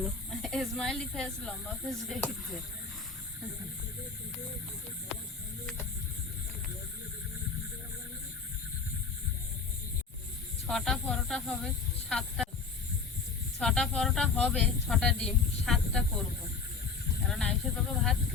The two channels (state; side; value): quieter; right; 5.0 dB